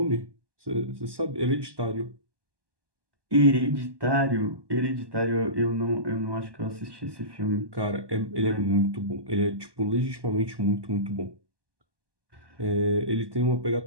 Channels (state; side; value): late; left; 1.2 ms